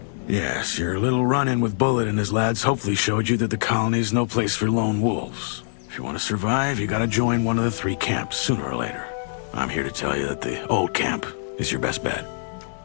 Yes, your little run-in with Bullet and his lads hopefully showed you that the colony's no place for lone wolves. If you want to survive, you gotta join one of the 3 camps sooner or later. I'm here to tell you that the old camp is your best bet.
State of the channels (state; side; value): silent; right; 63 dB below the other